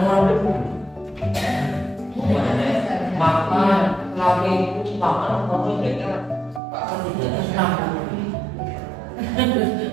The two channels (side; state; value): left; drops out; at 6.6 s